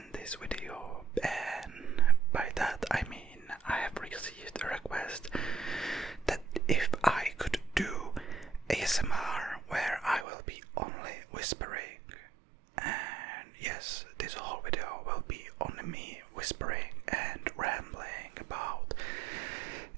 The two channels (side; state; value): left; drops out; at 10.2 s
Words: this video, and by that I mean I have received a request that if I could do ASMR where I will be only whispering, and yes, this whole video will be only me whispering and rambling about